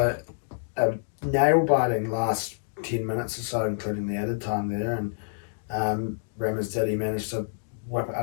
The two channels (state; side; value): silent; right; digital silence